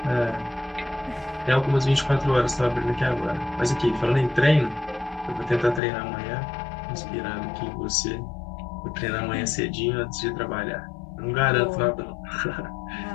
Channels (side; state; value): right; drops out; at 5.8 s